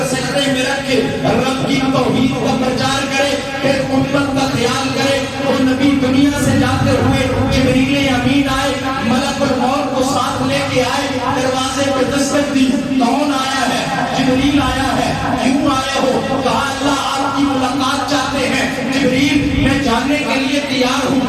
سجدے میں رکھے رب کی توحید کا پرچار کرے, پھر امت کا خیال کرے, وہ نبی دنیا سے جاتے ہوئے جبریل امین آئے, ملک الموت کو ساتھ لے کے آئے, دروازے پہ دستک دی, کون آیا ہے, جبریل آیا ہے. کیوں آئے ہو, کہا اللہ آپ کی ملاقات چاہتے ہیں. جبریل میں جانے کے لیے تیار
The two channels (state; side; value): identical; both; correlation 1.00